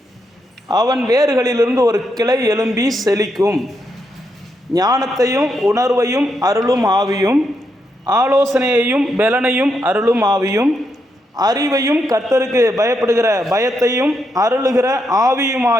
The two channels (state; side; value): normal; both; correlation 0.81